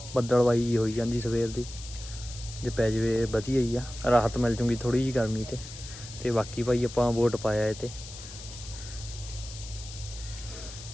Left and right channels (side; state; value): left; noise; hiss, 13 dB below the sound